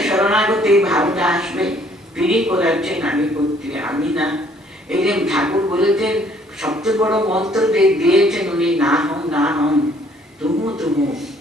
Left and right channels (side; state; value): both; normal; correlation 0.61